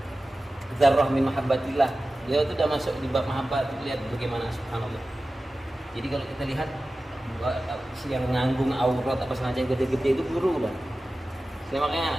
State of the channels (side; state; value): both; normal; correlation 0.95